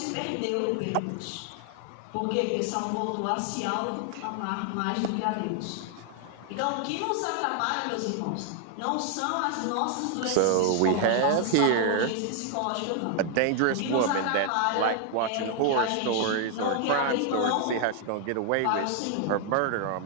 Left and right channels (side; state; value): both; different; correlation 0.00